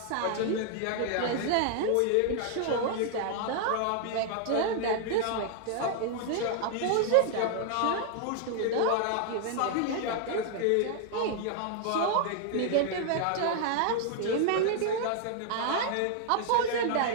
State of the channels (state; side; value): different; both; correlation 0.00